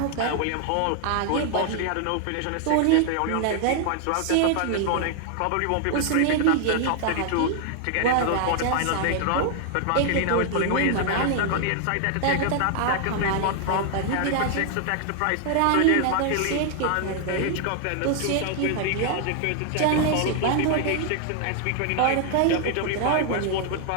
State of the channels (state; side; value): different; both; correlation 0.00